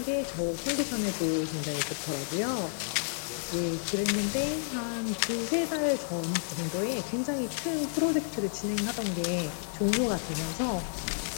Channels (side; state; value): right; silent; 57 dB below the other